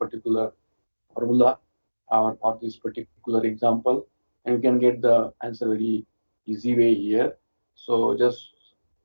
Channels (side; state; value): both; inverted; correlation -1.00